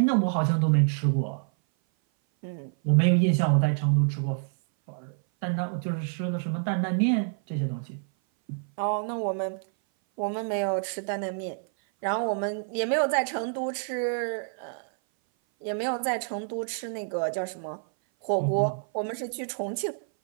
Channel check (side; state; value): left; silent; 57 dB below the other